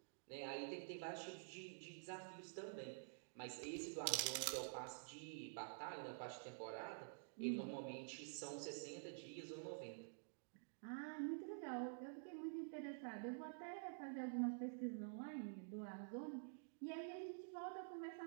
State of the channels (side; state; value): left; silent; digital silence